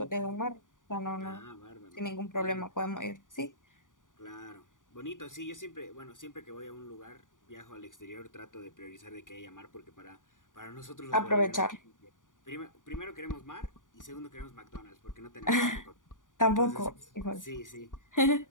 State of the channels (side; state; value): right; late; 0.88 ms